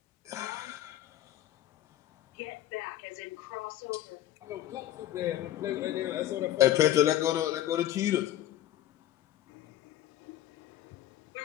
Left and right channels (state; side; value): quieter; right; 13.3 dB